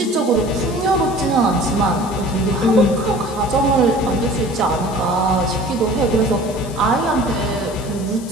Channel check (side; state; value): left; noise; hiss, 17 dB below the sound